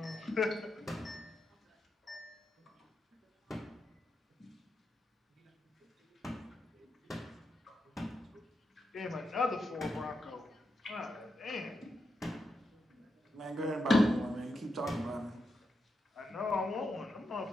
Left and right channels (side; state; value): both; normal; correlation 0.85